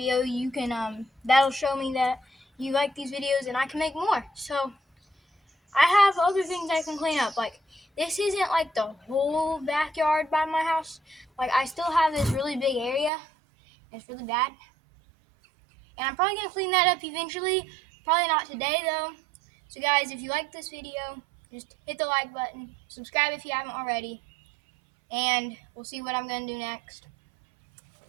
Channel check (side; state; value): left; drops out; at 13.1 s